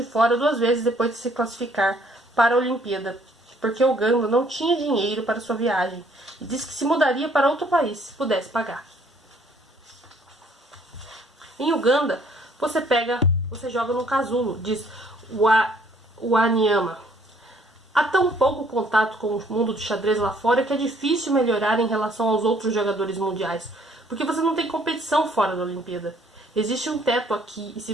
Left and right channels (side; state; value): both; normal; correlation 0.62